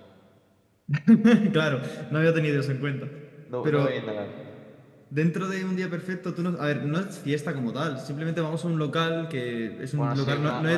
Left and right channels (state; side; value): identical; both; correlation 1.00